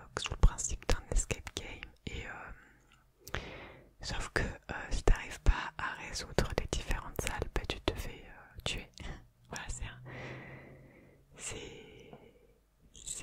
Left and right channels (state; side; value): identical; both; correlation 1.00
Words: sous le principe d'un escape game et sauf que si t'arrives pas à résoudre les différentes salles, bah, tu te fais tuer. Voilà, c'est